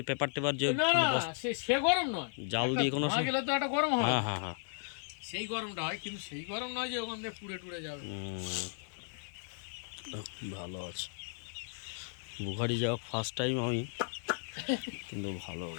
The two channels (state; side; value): silent; right; digital silence